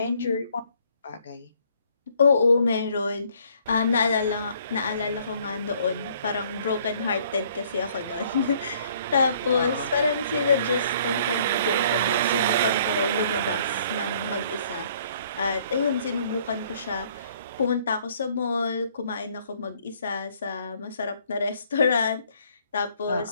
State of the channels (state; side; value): inverted; both; correlation -0.62